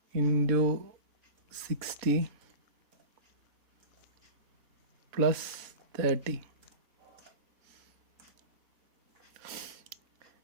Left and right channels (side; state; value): left; late; 3.5 ms